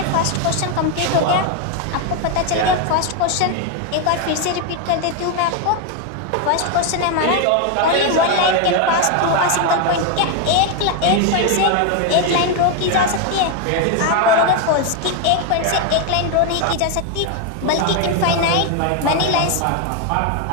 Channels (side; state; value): both; different; correlation 0.01